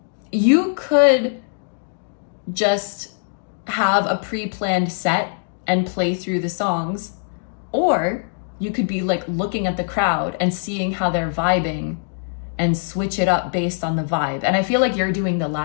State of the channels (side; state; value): right; silent; digital silence